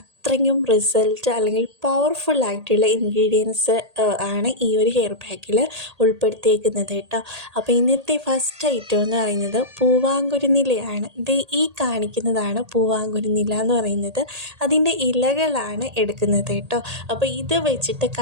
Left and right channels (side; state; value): left; late; 1.8 ms